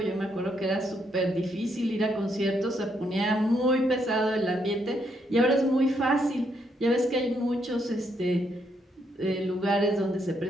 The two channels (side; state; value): both; normal; correlation 0.75